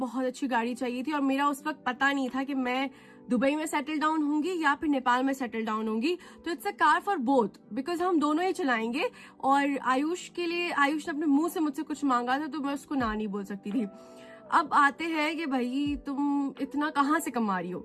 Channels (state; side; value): identical; both; correlation 1.00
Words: अच्छी गाड़ी चाहिए थी और मेरा उस वक्त पता नहीं था कि मैं दुबई में सेटल डाउन होंगी या फिर नेपाल में सेटल डाउन होंगी. तो it's a car for both because हम दोनों ही चलाएंगे. और आयुष के लिए आयुष ने अपने मुंह से मुझसे कुछ मांगा था तो मैं उसको ना नहीं बोल सकती थी. अब आते हैं कि भाई तुम इतना कहाँ से कमा रही हो.